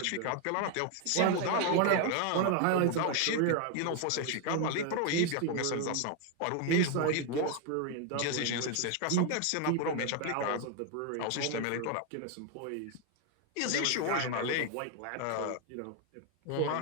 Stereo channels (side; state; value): both; different; correlation 0.01